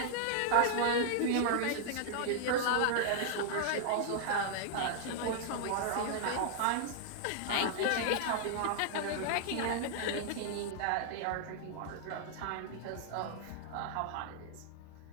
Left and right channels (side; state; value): both; different; correlation -0.01